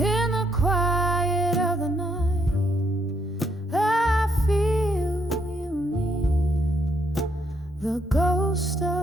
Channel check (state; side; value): normal; both; correlation 0.75